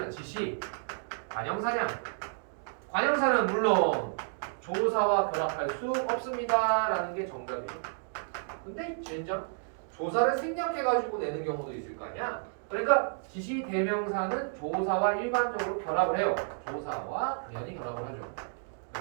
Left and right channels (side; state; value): left; silent; digital silence